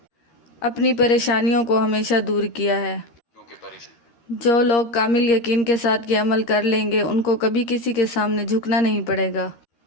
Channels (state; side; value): late; right; 13 ms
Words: اپنی پریشانیوں کو ہمیشہ دور کیا ہے۔ جو لوگ کامل یقین کے ساتھ یہ عمل کر لیں گے ان کو کبھی کسی کے سامنے جھکنا نہیں پڑے گا،